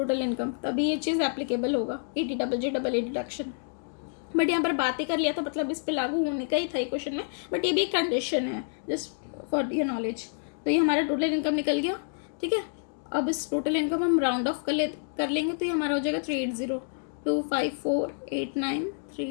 इनकम, तभी ये चीज़ एप्लीकेबल होगा 80JJAA डिडक्शन। बट यहाँ पर बात ही कर लिया तो मतलब इस पर लागू होने का ही था क्वेश्चन में, बट ये भी एक कंडीशन है जस्ट फॉर योर नॉलेज। तो ये हमारा टोटल इनकम निकल गया, ठीक है। अब इस टोटल इनकम हम राउंड ऑफ कर लेंगे, तो ये हमारा हो जाएगा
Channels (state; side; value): silent; right; digital silence